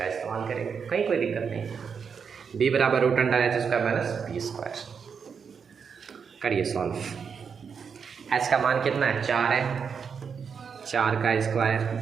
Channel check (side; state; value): left; quieter; 6.4 dB